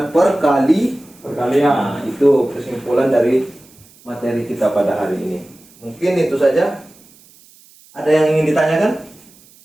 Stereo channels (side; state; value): right; noise; hiss, 27 dB below the sound